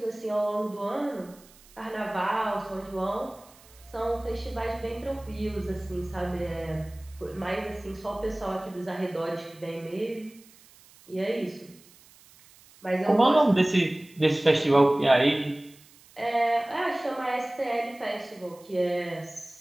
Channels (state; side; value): noise; right; hiss, 25 dB below the sound